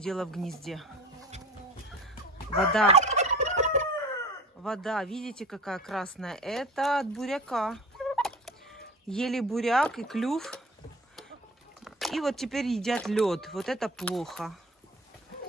в гнезде. Вода, видите, какая красная? Это от буряка. Ели буряк и клюв. И вот теперь едят лед. Вот это плохо.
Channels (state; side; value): normal; both; correlation 0.39